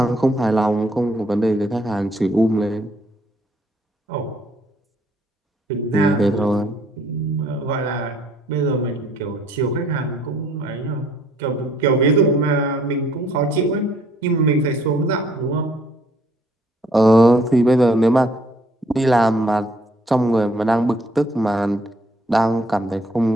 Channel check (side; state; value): both; normal; correlation 0.64